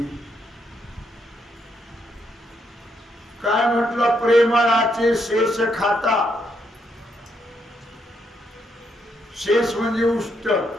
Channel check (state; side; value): normal; both; correlation 0.77